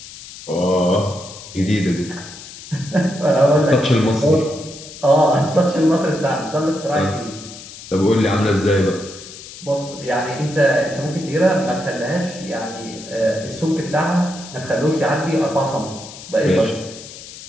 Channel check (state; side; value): noise; left; hiss, 15 dB below the sound